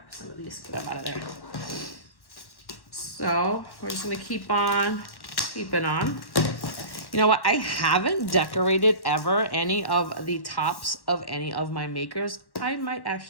some of these, get them out of there. So we're just gonna keep on keeping on. You know what? I haven't decorated ever any of the tops of any of my makers. I might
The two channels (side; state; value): right; late; 1.1 ms